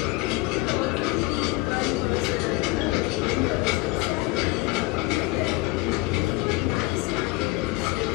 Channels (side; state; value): right; quieter; 21.8 dB